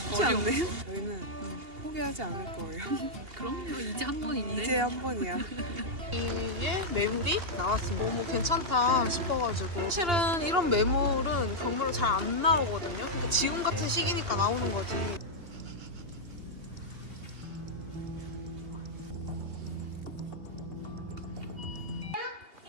쉽지 않네요. 저희는 포기하지 않을 거예요. 그럼요. 이제 한 번인데. 이제 한 번이야. 이게 매물이 나왔습니다. 너무 괜찮다 싶어가지고. 사실은 이런 매물은 경매로 잘 안 나오거든요. 그러니까 지금 같은 시기니까 나오는 거지.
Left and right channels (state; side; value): late; left; 2.8 ms